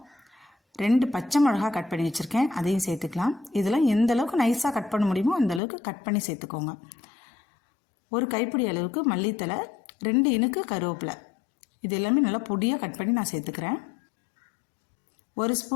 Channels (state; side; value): drops out; right; at 5.6 s